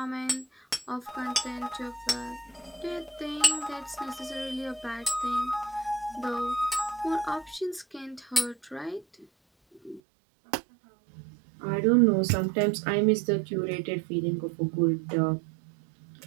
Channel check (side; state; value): left; drops out; at 10.0 s